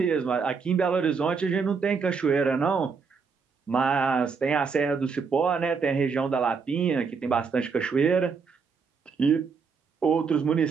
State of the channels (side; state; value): left; quieter; 5.4 dB